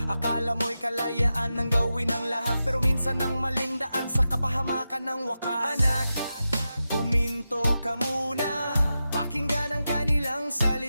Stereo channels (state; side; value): inverted; both; correlation -0.91